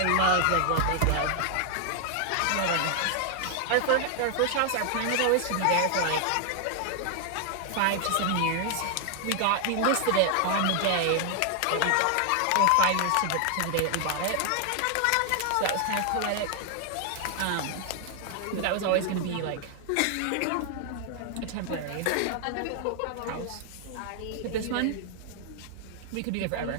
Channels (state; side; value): different; both; correlation 0.00